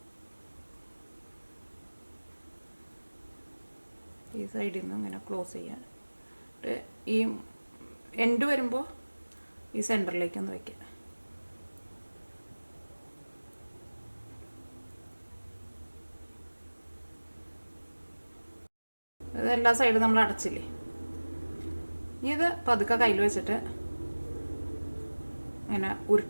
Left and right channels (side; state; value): both; inverted; correlation -1.00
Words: ഈ സൈഡിൽ നിന്ന് ഇങ്ങനെ ക്ലോസ് ചെയ്യാൻ. ഈ എൻഡ് വരുമ്പോൾ ഈ സെൻറ്ററിലേക്ക് ഒന്ന് വയ്ക്കുക. ഇത് എല്ലാ സൈഡും നമ്മൾ അടച്ചില്ലേ. ഇനി ഇത് പതുക്കെ കയ്യിൽ വെച്ചിട്ട് ഇങ്ങനെ